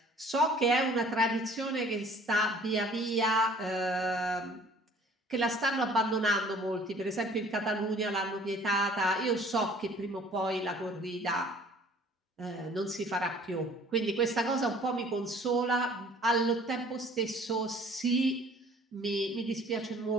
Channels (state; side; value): normal; both; correlation 0.52